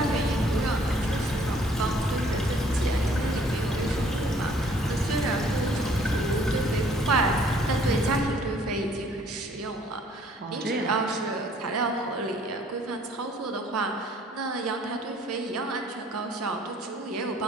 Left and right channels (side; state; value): both; normal; correlation 0.59